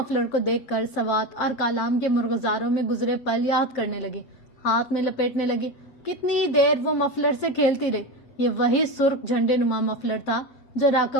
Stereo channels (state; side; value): late; right; 7.6 ms